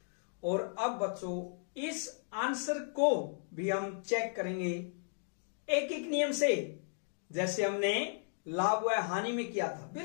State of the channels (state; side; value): silent; right; digital silence